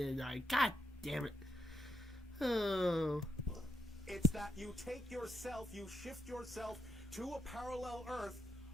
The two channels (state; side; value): normal; both; correlation 0.77